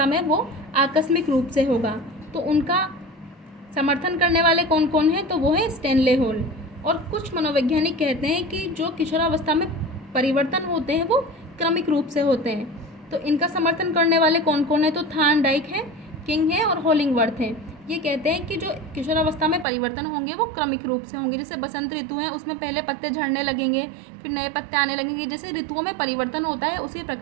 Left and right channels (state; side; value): drops out; left; at 19.7 s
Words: में वो आकस्मिक रूप से होगा, तो उनका समर्थन करने वाले कौन कौन हैं, तो वो है स्टैनले हॉल। और कुछ मनोवैज्ञानिक कहते हैं कि जो किशोरावस्था में परिवर्तन होते हैं वो क्रमिक रूप से होते हैं। तो इनका समर्थन करने वाले कौन कौन है, तो थार्नडाइक है, किंग है और होलिंगवर्थ है। ये कहते हैं कि जो किशोरावस्था में परिवर्तन होंगे वो क्रमिक रूप से होंगे। जैसे बसंत ऋतु है, उसमें पहले पत्ते झड़ने लगेंगे, फिर नए पत्ते आने लगेंगे। जैसे ऋतुओं में परिवर्तन होता है उसी